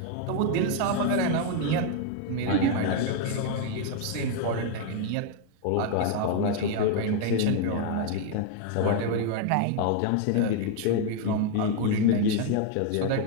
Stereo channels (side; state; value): both; different; correlation 0.00